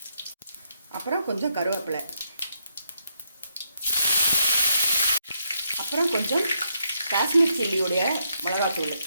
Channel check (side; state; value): both; inverted; correlation -0.78